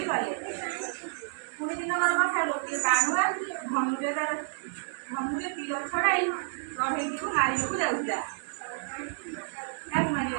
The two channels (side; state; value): left; silent; 58 dB below the other